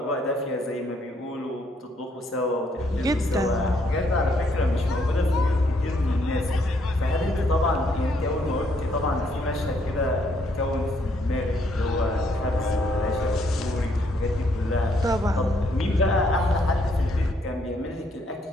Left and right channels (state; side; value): normal; both; correlation 0.71